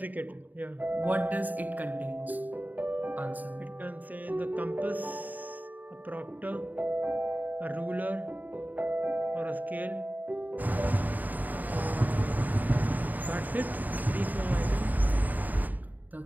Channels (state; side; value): late; left; 0.083 ms